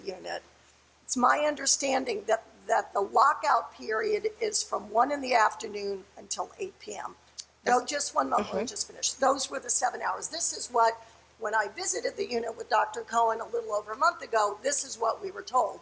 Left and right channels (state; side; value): identical; both; correlation 1.00